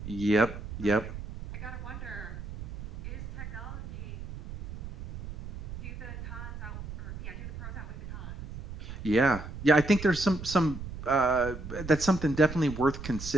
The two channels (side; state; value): right; noise; rumble, 10 dB below the sound